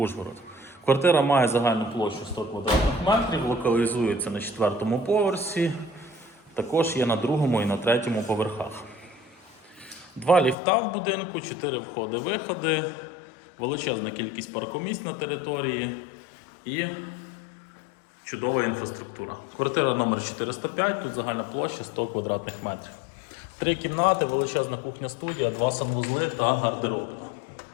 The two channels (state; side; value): drops out; right; at 10.6 s